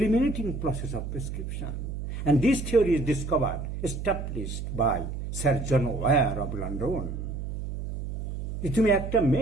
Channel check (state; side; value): noise; right; hum, 6 dB below the sound